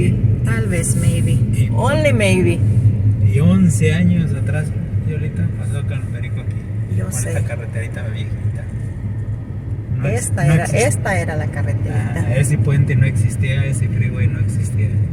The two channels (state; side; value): identical; both; correlation 1.00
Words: Tal vez, maybe. Only maybe. Y 11 años atrás, y ahorita pasó con el perico aquí. Yo Con sé. esta carreterita viejita. Esta era la carreterita. Ese puente no existía, ese freeway no existía.